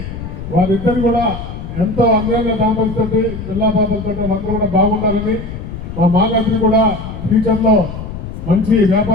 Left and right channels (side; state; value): left; noise; rumble, 9 dB below the sound